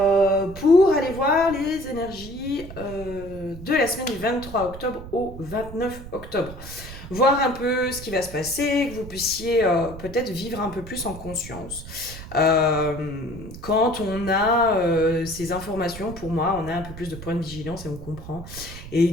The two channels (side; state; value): right; noise; rumble, 13 dB below the sound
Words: pour aller voir les énergies de la semaine du 23 octobre au 29 octobre. Voir un peu ce qui va se passer, que vous puissiez peut-être vivre un peu plus en conscience. Quand on a ces informations, pour moi, on a un peu plus de points de vigilance et on comprend. Et